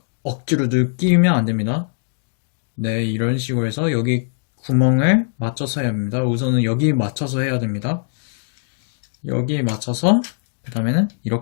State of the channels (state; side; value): silent; right; digital silence